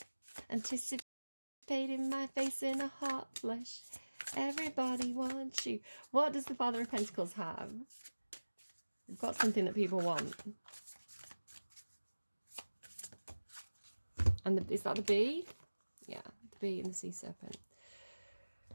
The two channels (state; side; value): inverted; both; correlation -1.00